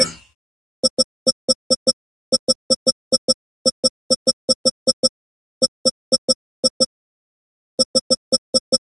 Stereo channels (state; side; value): normal; both; correlation 0.96